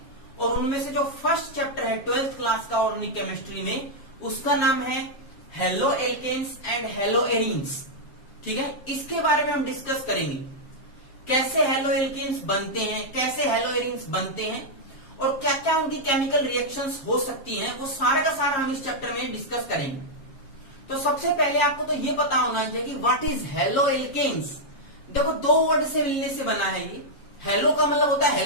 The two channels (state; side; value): late; right; 7.4 ms